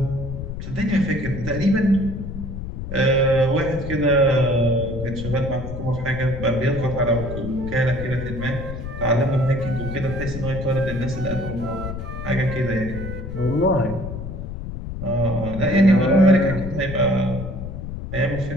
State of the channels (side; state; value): left; noise; rumble, 7 dB below the sound